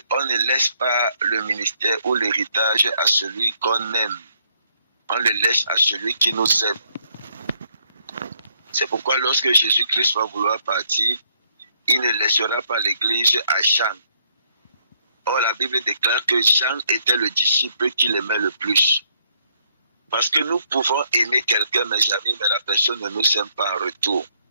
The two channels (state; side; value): inverted; both; correlation -0.71